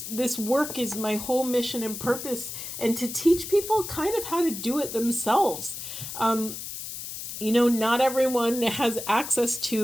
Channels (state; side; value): noise; left; hiss, 8 dB below the sound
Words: work is my whole mission and purpose, and to teach people kind of how to do it themselves. Not everyone has access